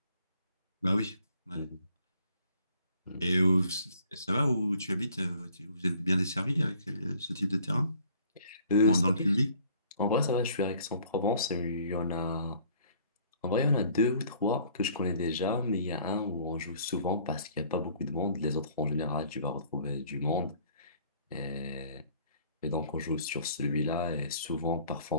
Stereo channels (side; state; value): both; inverted; correlation -0.57